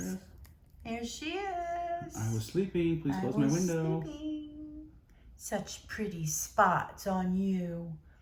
There she is. I was sleeping. Please close my window. Sleeping. Such pretty spots on you.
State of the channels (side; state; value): both; identical; correlation 1.00